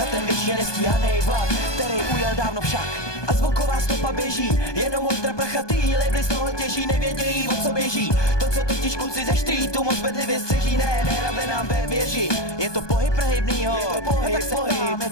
ten věčně nestíhanej vlak, který ujel dávno však. A zvuková stopa běží, jenom ultra prachatý labely z toho těží, nevědějí, o co běží. To, co totiž kluci ze streetu moc bedlivě střeží, nehrabe nám ve věži. Je to pohyb prehybnýho, je to pohyb, pohyb, je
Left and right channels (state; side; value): late; right; 1.2 ms